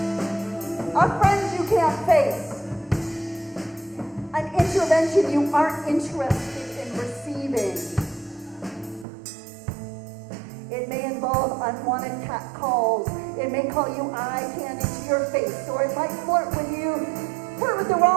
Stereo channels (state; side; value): drops out; left; at 9.1 s